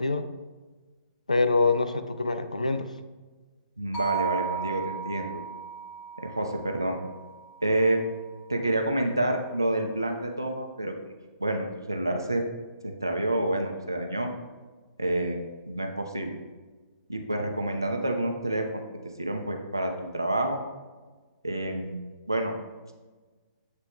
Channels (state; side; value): inverted; both; correlation -0.76